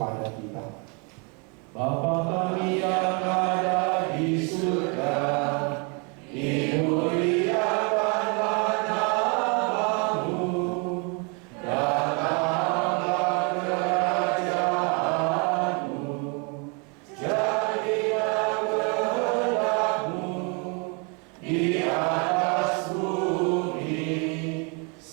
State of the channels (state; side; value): quieter; left; 34.1 dB